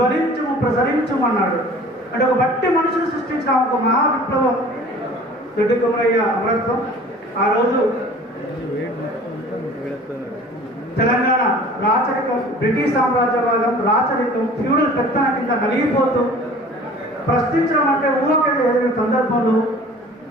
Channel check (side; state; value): both; normal; correlation 0.46